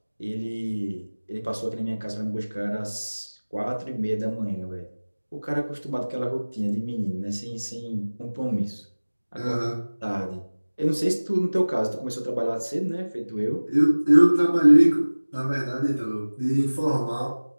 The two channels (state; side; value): inverted; both; correlation -1.00